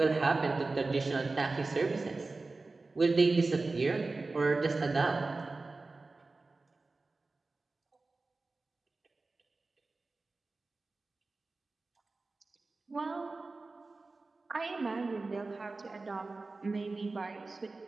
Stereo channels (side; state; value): left; quieter; 3.6 dB